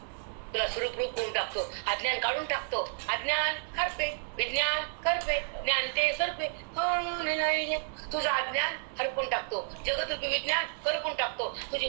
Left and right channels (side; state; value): left; silent; digital silence